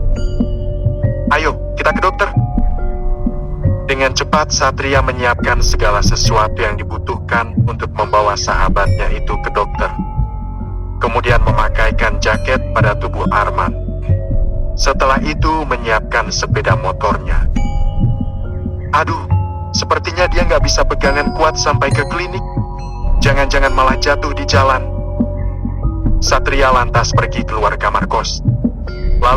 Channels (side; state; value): both; identical; correlation 1.00